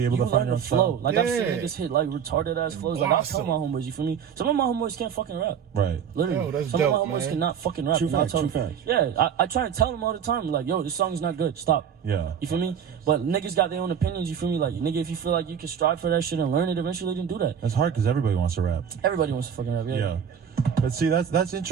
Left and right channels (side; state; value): left; quieter; 8.0 dB